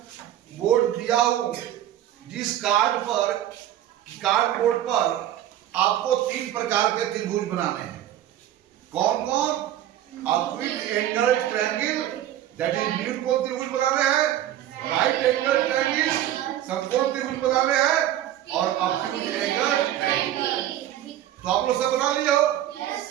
बोर्ड दिया हूं, जिस कार्ड बोर्ड पर आपको 3 प्रकार के त्रिभुज बनाने हैं। कौन कौन? Acute angle triangle, that is न्यूनकोण त्रिभुज बनाने हैं, राइट एंगल ट्रायंगल समकोण त्रिभुज बनाने हैं, और एक्यूट एंगल ट्रायंगल। तो आप लोग सब बना लिए हो?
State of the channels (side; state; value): left; quieter; 12.2 dB